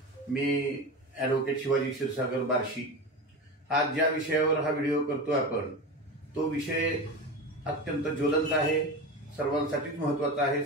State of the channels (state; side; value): normal; both; correlation 0.26